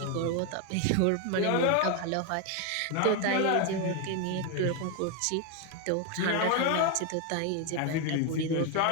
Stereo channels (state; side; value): different; both; correlation 0.01